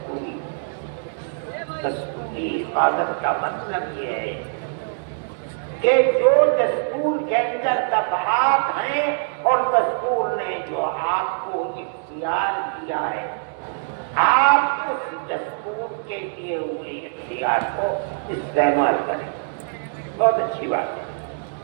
دستوری حفاظت کا مطلب یہ ہے کہ جو دستور کے اندر دفعات ہیں اور دستور نے جو آپ کو اختیار دیا ہے، آپ اس دستور کے دیے ہوئے اختیار کو استعمال کریں، بہت اچھی بات ہے۔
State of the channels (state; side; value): silent; left; digital silence